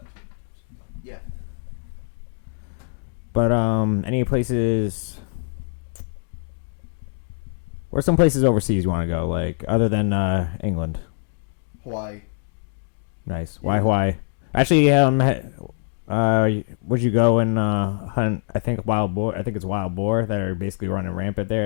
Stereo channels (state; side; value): silent; right; digital silence